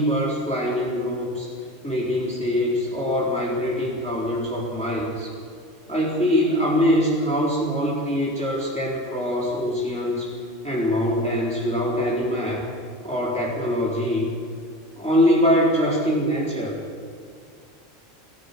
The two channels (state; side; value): normal; both; correlation 0.34